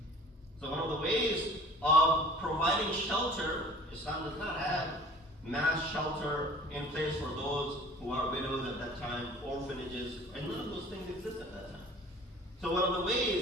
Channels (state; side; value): normal; both; correlation 0.47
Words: So one of the ways of providing shelter, Islam does not have mass shelter in place for those who are widows at that time, orphanages, and none of those things exist at that time. So one of the